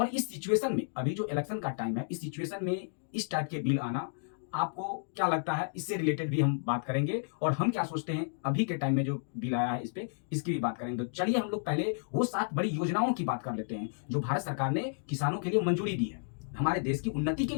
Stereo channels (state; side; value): silent; right; digital silence